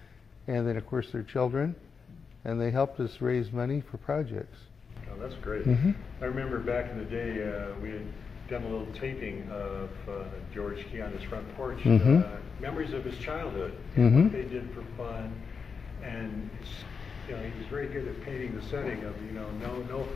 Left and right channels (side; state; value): right; quieter; 5.6 dB